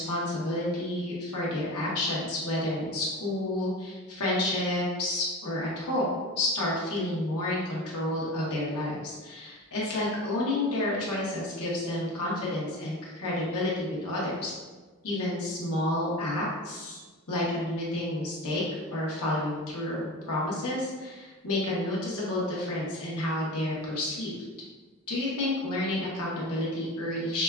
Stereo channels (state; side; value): normal; both; correlation 0.31